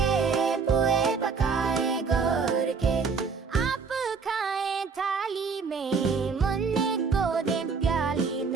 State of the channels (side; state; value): left; quieter; 5.2 dB